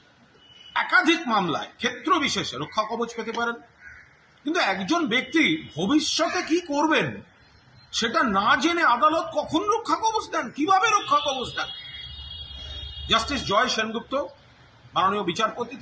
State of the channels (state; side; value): identical; both; correlation 1.00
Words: একাধিক মামলায় ক্ষেত্র বিশেষে রক্ষা কবচ পেতে পারেন, কিন্তু একজন ব্যক্তি ভবিষ্যতে কি করবেন সেটা না জেনে আদালত কখন রক্ষা কবচ দেন, কিভাবে রক্ষা কবচ দেন? জাস্টিস জয় সেনগুপ্ত মাননীয় বিচারপতি